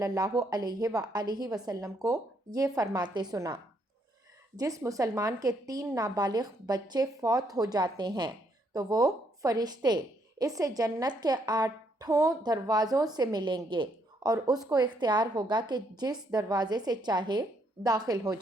اللہ علیہ وآلہ وسلم کو یہ فرماتے سنا، جس مسلمان کے 3 نابالغ بچے فوت ہو جاتے ہیں تو وہ فرشتے اس سے جنت کے 8 دروازوں سے ملیں گے اور اس کو اختیار ہوگا کہ جس دروازے سے چاہے داخل ہو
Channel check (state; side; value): normal; both; correlation 0.72